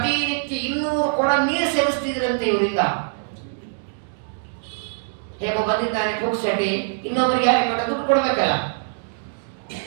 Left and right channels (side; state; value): left; silent; digital silence